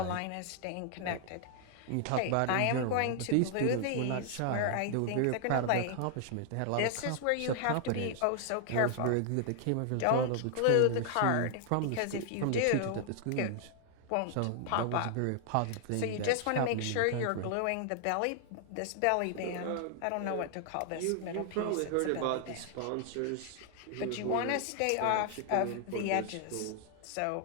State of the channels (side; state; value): both; different; correlation 0.00